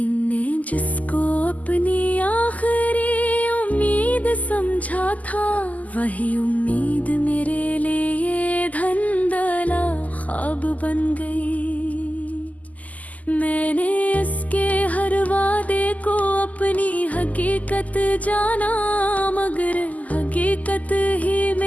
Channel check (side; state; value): right; late; 0.076 ms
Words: ने जिसको अपनी आखिरी उम्मीद समझा था, वही उम्मीद मेरे लिए धंधला ख्वाब बन गई। मैंने इसके हर वादे को अपनी हकीकत जाना, मगर हकीकत ही